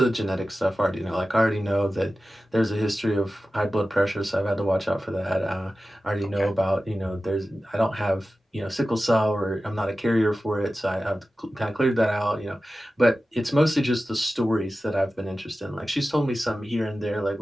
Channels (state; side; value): normal; both; correlation 0.95